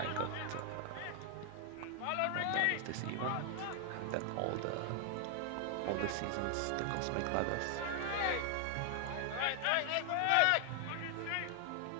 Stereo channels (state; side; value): different; both; correlation 0.00